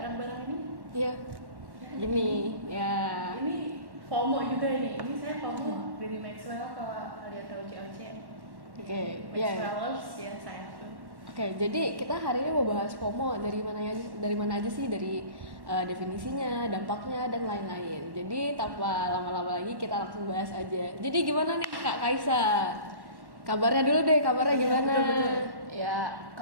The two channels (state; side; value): late; left; 1.1 ms